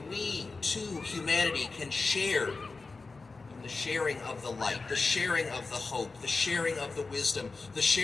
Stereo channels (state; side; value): quieter; right; 4.0 dB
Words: we, too, humanity, can share in the sharing of the light, the sharing of the hope, the sharing of the wisdom, the